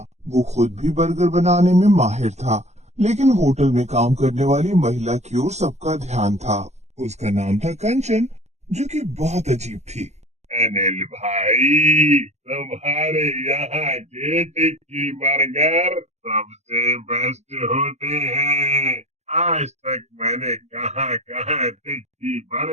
वो खुद भी बर्गर बनाने में माहिर था, लेकिन होटल में काम करने वाली महिला की ओर सबका ध्यान था। उसका नाम था कंचन, जो कि बहुत अजीब थी। अनिल भाई, तुम्हारे यहाँ के टिक्की बर्गर सबसे बेस्ट होते हैं। आज तक मैंने कहाँ कहाँ टिक्की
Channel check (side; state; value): left; late; 0.32 ms